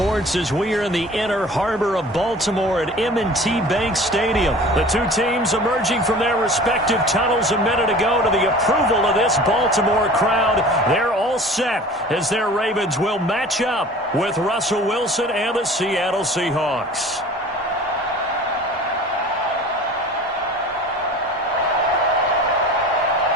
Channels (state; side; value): normal; both; correlation 0.43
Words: as we are in the inner harbor of Baltimore at M&T Bank Stadium. The two teams emerging from their respective tunnels a minute ago to the approval of this Baltimore crowd. They're all set as their Ravens will match up with Russell Wilson and the Seattle Seahawks.